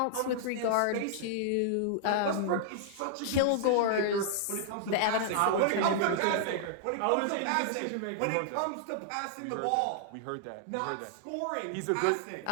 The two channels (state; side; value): different; both; correlation -0.01